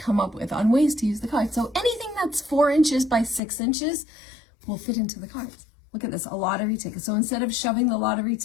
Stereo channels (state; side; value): drops out; right; at 3.4 s